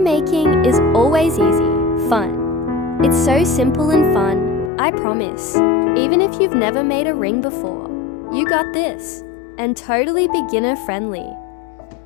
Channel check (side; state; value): right; drops out; at 4.7 s